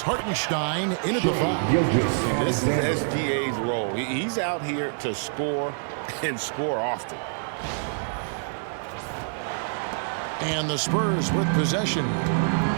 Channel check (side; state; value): left; silent; 60 dB below the other